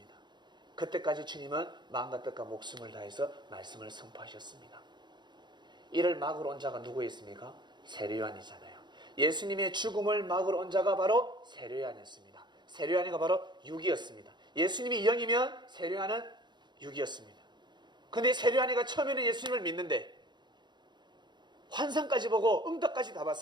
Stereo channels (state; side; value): late; left; 0.21 ms